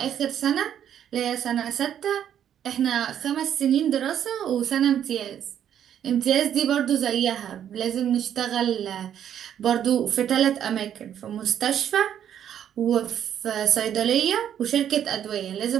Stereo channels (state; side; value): quieter; left; 9.8 dB